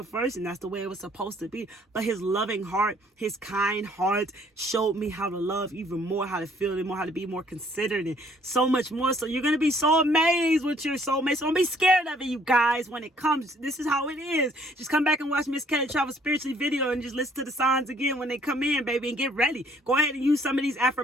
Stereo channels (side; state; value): both; normal; correlation 0.62